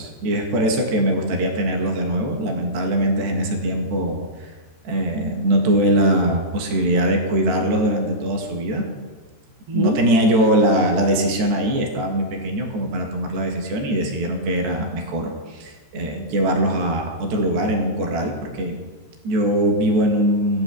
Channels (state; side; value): late; left; 13 ms